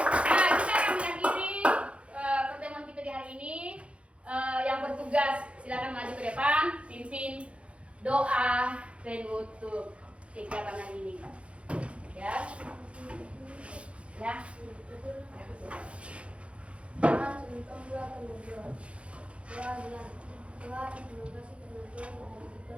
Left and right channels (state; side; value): late; left; 0.061 ms